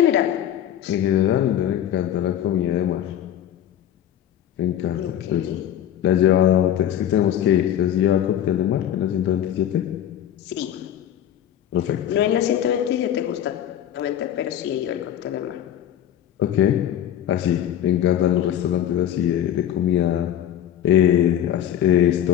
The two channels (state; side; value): quieter; right; 10.8 dB